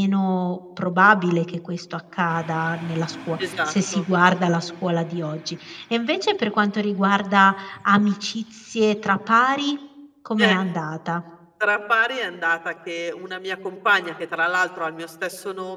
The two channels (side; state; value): both; identical; correlation 1.00